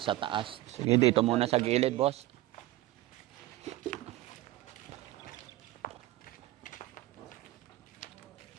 taas. Sige, dito muna sa gilid, boss.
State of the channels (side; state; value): left; quieter; 16.7 dB